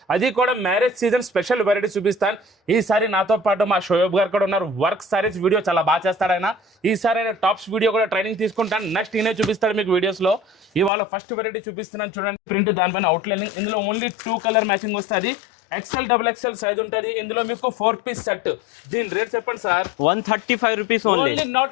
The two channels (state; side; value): drops out; right; at 10.9 s